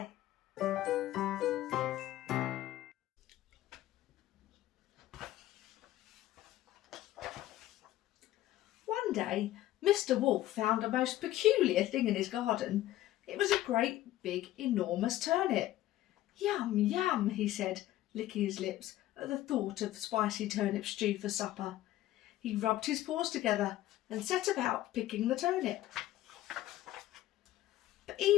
One day, Mr. Wolf found a most peculiar thing in his garden. It was a great, big, enormous turnip. Yum, yum, he said, licking his lips at the thought of spicy turnip stew for supper. He rubbed his paws together and set about picking the turnip. But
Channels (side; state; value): right; quieter; 14.6 dB